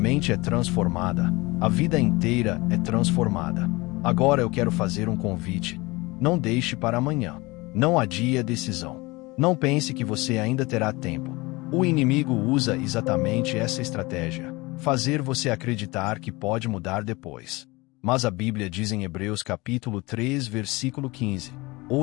é transformada, a vida inteira é transformada. Agora eu quero fazer um convite. Não deixe para amanhã. Não adie a decisão. Não pense que você ainda terá tempo. O inimigo usa exatamente essa estratégia: fazer você acreditar que pode mudar depois. Mas a Bíblia diz em Hebreus capítulo 3, versículo 15:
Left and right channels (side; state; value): right; quieter; 23.1 dB